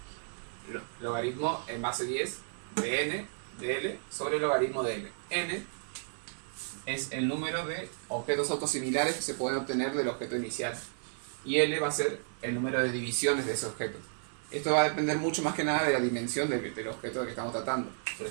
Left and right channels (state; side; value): silent; left; digital silence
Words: logaritmo en base 10 de n de L sobre el logaritmo de L. N es el número de objetos autosimilares que se pueden obtener del objeto inicial y L va a ser el número de divisiones de ese objeto. Esto va a depender mucho más que nada de la dimensión del objeto que estamos tratando. Por